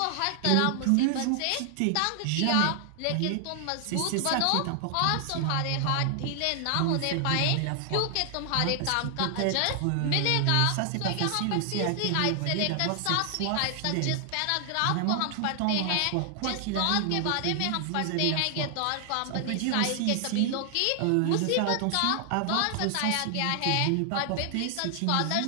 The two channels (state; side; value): different; both; correlation 0.00